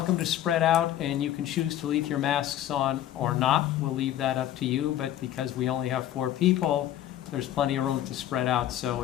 to spread out, and you can choose to leave your masks on or not. We'll leave that up to you, but because we only have 4 people, there's plenty of room to spread out. So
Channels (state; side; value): quieter; right; 12.3 dB